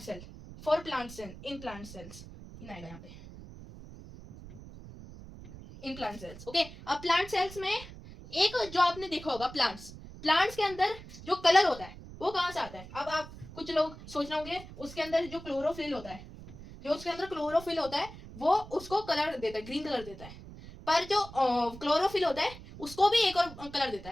cell, for plant cell, in plant cells, in आएगा यहाँ पे, इन प्लांट सेल्स, ओके। अब प्लांट सेल्स में एक जो आपने देखा होगा, प्लांट्स के अंदर जो कलर होता है वो कहाँ से आता है। अब आप कुछ लोग सोच रहे होंगे उसके अंदर जो क्लोरोफिल होता है, वो उसको कलर देता है, ग्रीन कलर देता है। पर जो क्लोरोफिल होता है उसको भी एक और कलर देता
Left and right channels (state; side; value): noise; right; rumble, 15 dB below the sound